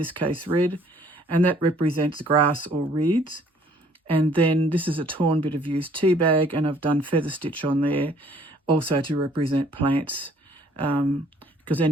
case red, and that represents grass or reeds. And then this is a torn bit of used tea bag, and I've done feather stitch on there also to represent plants, because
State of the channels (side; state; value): both; normal; correlation 0.59